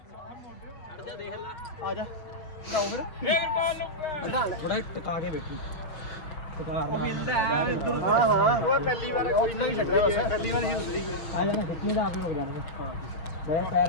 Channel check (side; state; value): right; late; 5.7 ms